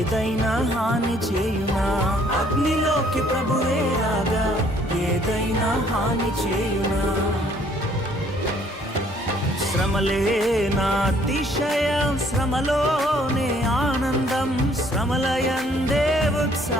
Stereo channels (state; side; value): normal; both; correlation 0.62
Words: హాని చేయునా? అగ్నిలోకి ప్రభువే రాగా ఏదైనా హాని చేయునా? శ్రమలే నా అతిశయం, శ్రమలోనే ఆనందం, శ్రమలయందే